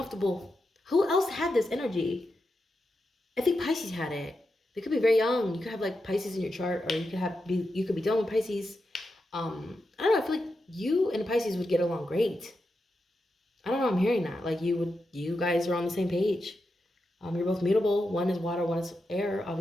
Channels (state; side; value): normal; both; correlation 0.88